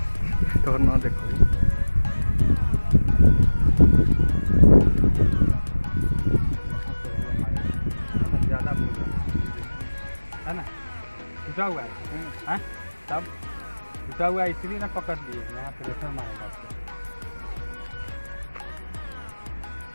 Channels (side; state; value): both; inverted; correlation -1.00